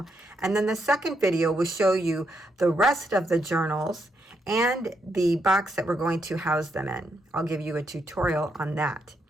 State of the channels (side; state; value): both; normal; correlation 0.79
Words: And then the second video will show you the rest of the journals and the box that we're going to house them in. I'll give you a tutorial on that.